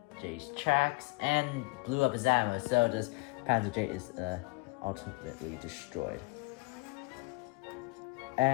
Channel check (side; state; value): right; quieter; 26.0 dB